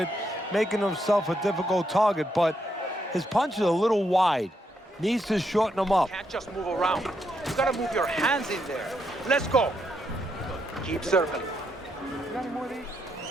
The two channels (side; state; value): both; normal; correlation 0.78